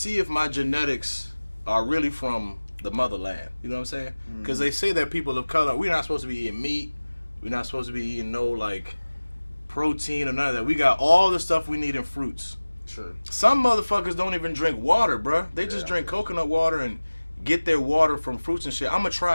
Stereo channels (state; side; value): inverted; both; correlation -1.00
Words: if my genetics are really from the motherland. You know what I'm saying? Because they say that people of color, we're not supposed to be eating meat. We're not supposed to be eating no like protein or none of that. We got all the stuff we need in fruits. True. Some motherfuckers don't even drink water, bruh. They just drink coconut water and get their water from fruits and shit. I'm gonna